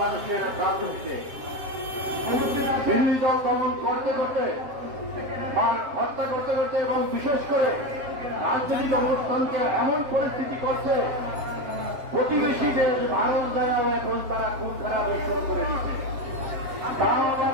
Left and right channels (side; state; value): left; late; 7.4 ms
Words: রাজনীতিতে। বিরোধী দল দমন করতে করতে বা হত্যা করতে করতে এবং বিশেষ করে রাজনৈতিক অবস্থানকে এমন পরিস্থিতি করছে, প্রতিবেশী দেশ ভারত দ্বারাও এখন তারা খুন খারাপ শুরু করে দিচ্ছে। তাও আবার